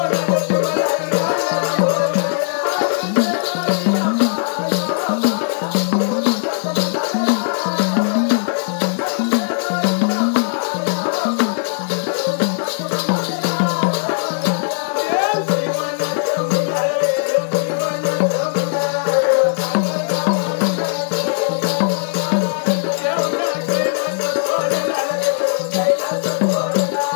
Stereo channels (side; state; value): right; silent; digital silence